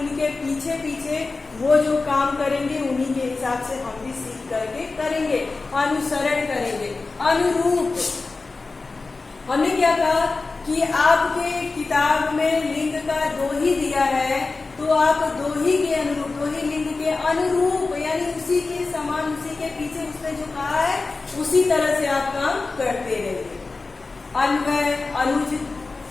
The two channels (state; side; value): quieter; right; 3.8 dB